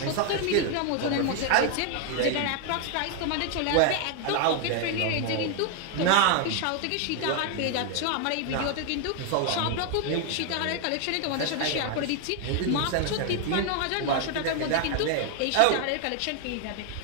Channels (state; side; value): different; both; correlation 0.00